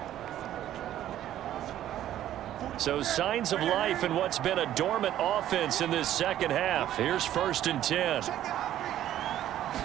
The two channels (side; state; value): left; quieter; 12.2 dB